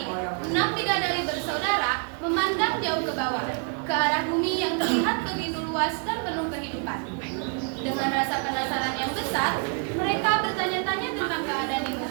6 bidadari bersaudara memandang jauh ke bawah, ke arah bumi yang terlihat begitu luas dan penuh kehidupan. Dengan rasa penasaran yang besar, mereka bertanya-tanya tentang keadaan di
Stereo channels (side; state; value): left; quieter; 39.0 dB